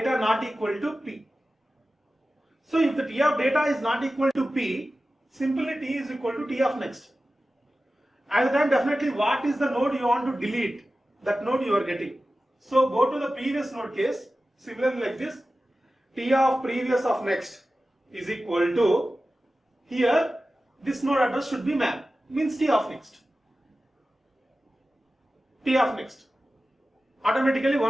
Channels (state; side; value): normal; both; correlation 0.95